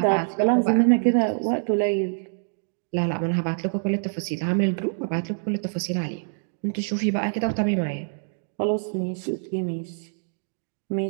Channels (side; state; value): left; silent; digital silence